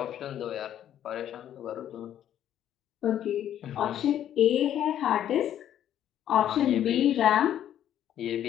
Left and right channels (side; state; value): right; quieter; 10.8 dB